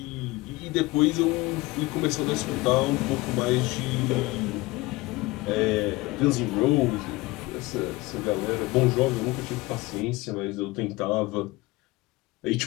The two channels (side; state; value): right; quieter; 21.4 dB